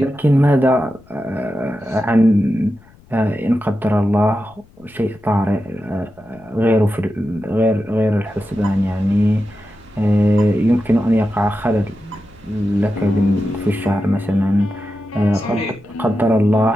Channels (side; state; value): left; noise; rumble, 26 dB below the sound